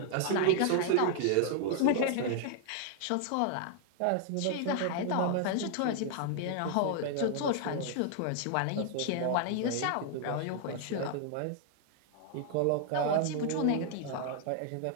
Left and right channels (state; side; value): different; both; correlation 0.00